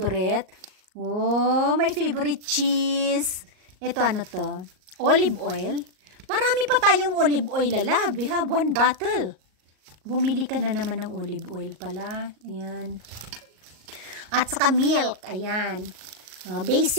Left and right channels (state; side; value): late; left; 38 ms